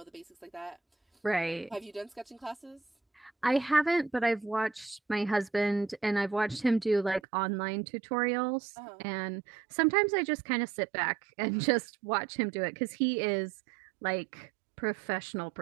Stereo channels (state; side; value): drops out; left; at 7.2 s